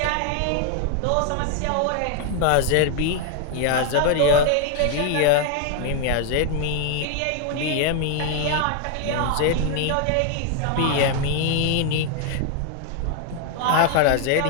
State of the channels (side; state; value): both; different; correlation 0.00